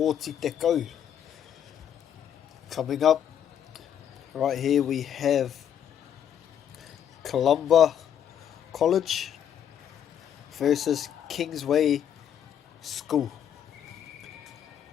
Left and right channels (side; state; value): right; quieter; 9.4 dB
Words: te kau. Coming up, right here we have Columba College versus Kingsway School.